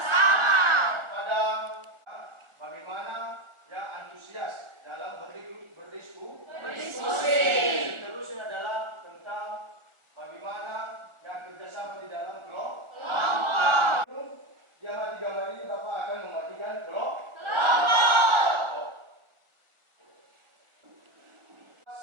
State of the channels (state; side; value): late; left; 1.4 ms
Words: Pada bagaimana ya antusias dalam berdiskusi. Seterusnya adalah tentang bagaimana yang kerjasama di dalam kelompok. Jam 3 ini Bapak akan membagikan kelompok.